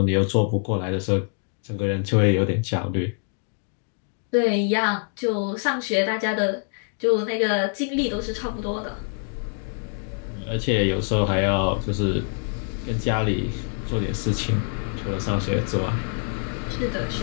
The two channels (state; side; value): silent; right; 57 dB below the other